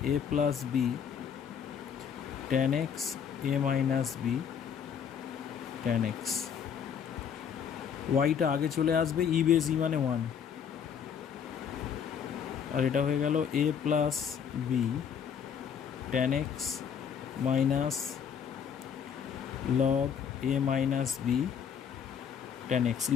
a plus b tan x a minus b tan x. ওয়াইটা আগে চলে আসবে, ই বেস ই মানে 1, আর এটা হয়ে গেল a plus b tan x minus log a minus b tan x.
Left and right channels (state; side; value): quieter; right; 7.6 dB